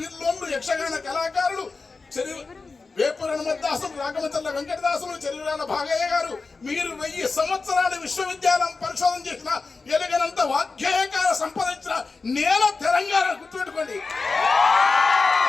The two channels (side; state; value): right; quieter; 4.1 dB